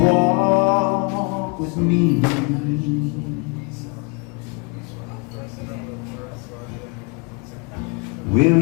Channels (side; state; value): right; quieter; 31.4 dB